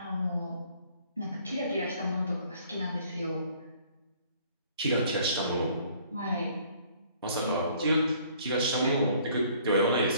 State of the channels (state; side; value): inverted; both; correlation -0.58